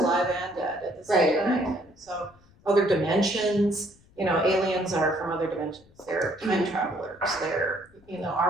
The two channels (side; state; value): left; noise; rumble, 29 dB below the sound